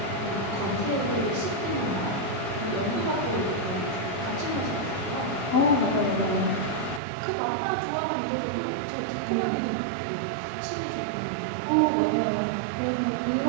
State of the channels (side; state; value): left; drops out; at 7.0 s